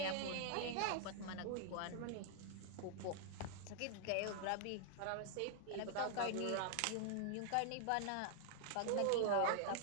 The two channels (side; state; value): both; different; correlation -0.01